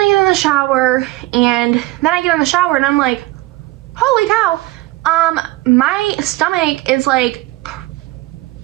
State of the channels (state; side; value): quieter; left; 19.2 dB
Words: get in the shower, and then I get in the shower and I'm like, holy cow, my stomach is like